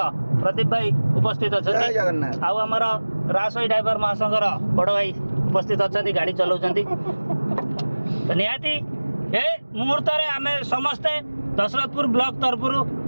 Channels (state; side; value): inverted; both; correlation -1.00